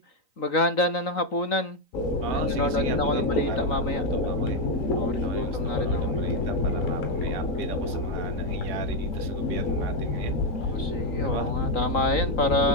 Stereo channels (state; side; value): late; right; 3.9 ms